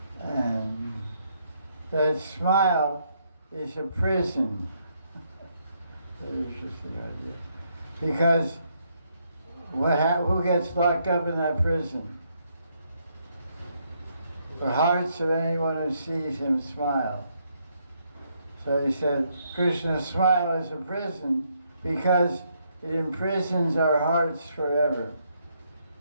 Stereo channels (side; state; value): both; inverted; correlation -0.74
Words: And that smile is a prison. There's just the idea. Because who gets locked up in that prison? The hearts of anyone who sees him smile. So he said, Krishna's smile is a prison because it imprisons our hearts forever.